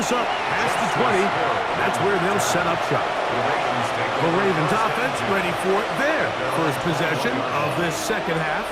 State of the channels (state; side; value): identical; both; correlation 1.00